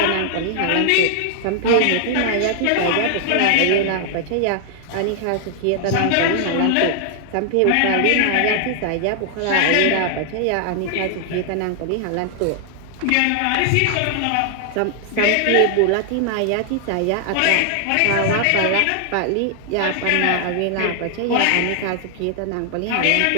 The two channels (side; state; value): both; different; correlation 0.00